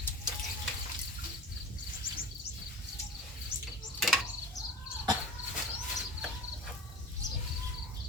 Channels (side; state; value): both; normal; correlation 0.37